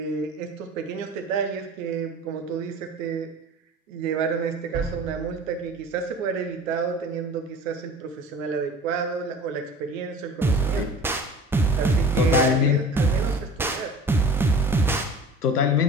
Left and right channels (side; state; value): both; normal; correlation 0.39